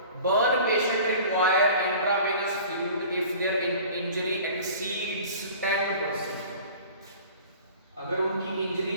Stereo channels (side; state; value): both; inverted; correlation -0.43